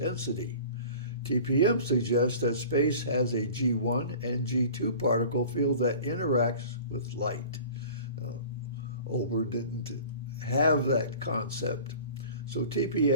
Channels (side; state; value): both; inverted; correlation -0.43